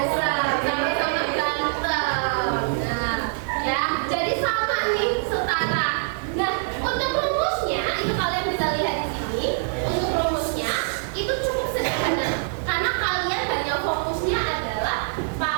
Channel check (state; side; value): silent; left; digital silence